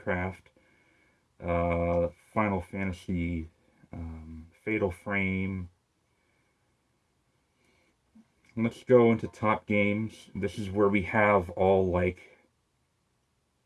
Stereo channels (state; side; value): identical; both; correlation 1.00